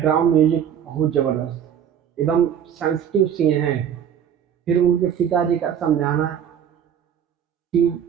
म्यूजिक, बहुत जबरदस्त, एकदम सेंसिटिव सीन है। फिर उनके पिताजी का समझाना कि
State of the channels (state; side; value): quieter; left; 8.8 dB